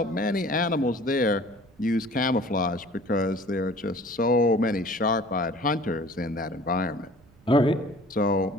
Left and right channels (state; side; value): noise; right; rumble, 28 dB below the sound